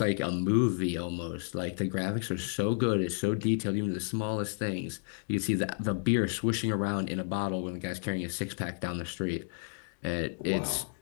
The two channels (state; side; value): silent; right; digital silence